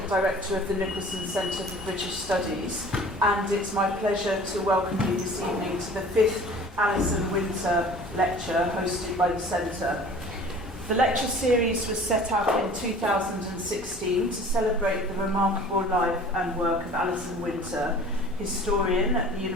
director of the Nicholson Centre for British Studies. And it's my pleasure to welcome you this evening to the 5th Alison Winter Lecture hosted by the Centre. The lecture series was set up in 2016 to celebrate the remarkable life and work of Alison Winter, historian at the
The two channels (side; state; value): both; normal; correlation 0.46